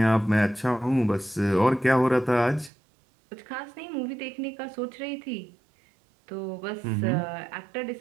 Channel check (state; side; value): drops out; left; at 2.7 s